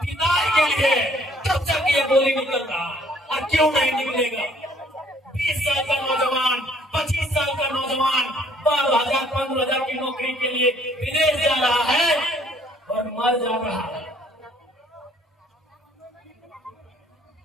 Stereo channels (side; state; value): both; normal; correlation 0.60